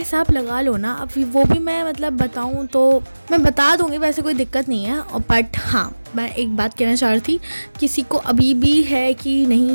लगा लो ना. अब वो भी मैं मतलब बताऊँ तो मैं बता दूँगी, वैसे कोई दिक्कत नहीं है. बट हाँ मैं एक बात कहना चाह रही थी, किसी को अभी भी है कि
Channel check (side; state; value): both; inverted; correlation -1.00